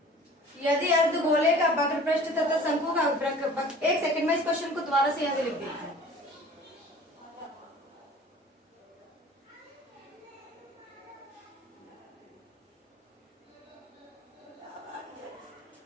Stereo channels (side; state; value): both; normal; correlation 0.46